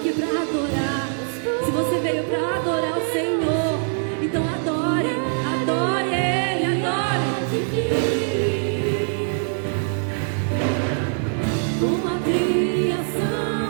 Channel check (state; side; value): silent; left; 63 dB below the other